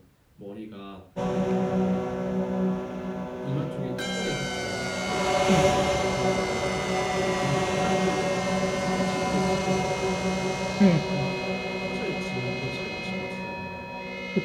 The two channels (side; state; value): both; identical; correlation 1.00